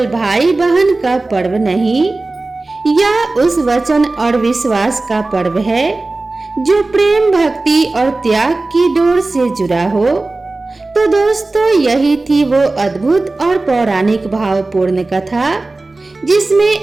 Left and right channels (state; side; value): quieter; left; 3.2 dB